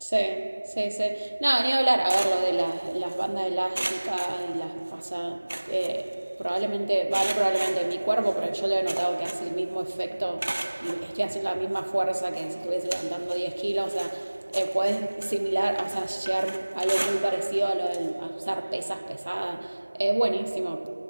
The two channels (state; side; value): inverted; both; correlation -1.00